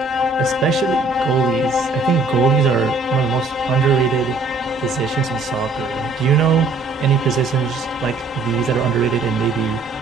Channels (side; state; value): left; quieter; 3.5 dB